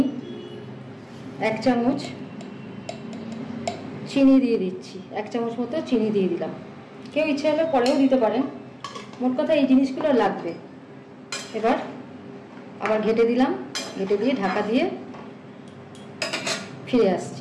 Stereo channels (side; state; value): both; identical; correlation 1.00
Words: 1 চামচ চিনি দিয়ে দিচ্ছি। 1 চামচ মতো চিনি দিয়ে দিলাম। কেউ ইচ্ছে হলে পরেও দিতে পারেন, মোট কথা এই জিনিসগুলো লাগবে। এবার আবার ঘেটে দিলাম, ঘেটে দিয়ে ঢাকা দিয়ে ফিরে